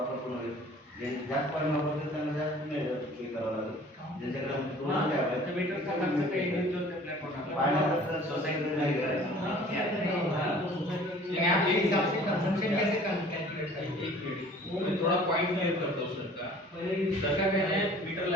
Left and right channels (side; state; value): both; normal; correlation 0.49